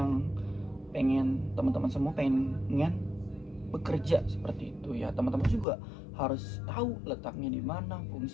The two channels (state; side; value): drops out; right; at 5.7 s